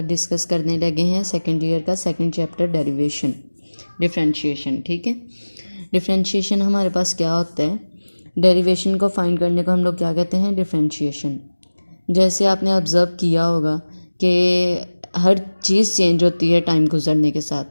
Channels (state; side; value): inverted; both; correlation -1.00